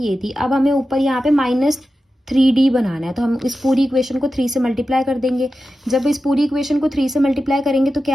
थी। अब हमें ऊपर यहाँ पे -3d बनाना है, तो हम इस पूरी इक्वेशन को 3 से मल्टीप्लाई कर देंगे। जब इस पूरी इक्वेशन को 3 से मल्टीप्लाई करेंगे तो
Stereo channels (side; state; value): both; normal; correlation 0.92